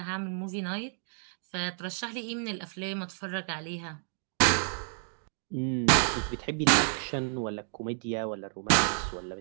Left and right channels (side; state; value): left; silent; 57 dB below the other